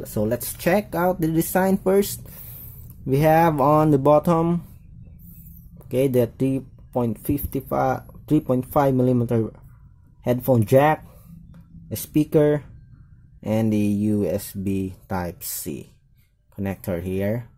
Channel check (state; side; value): identical; both; correlation 1.00